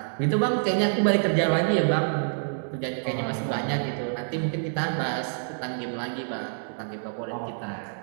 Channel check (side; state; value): left; silent; 60 dB below the other